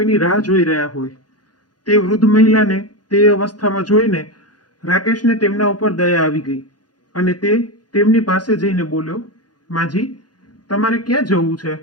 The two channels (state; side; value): late; right; 0.69 ms